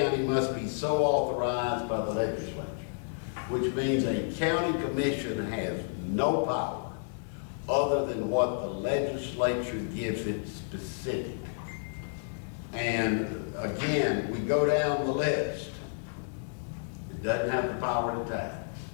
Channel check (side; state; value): right; silent; digital silence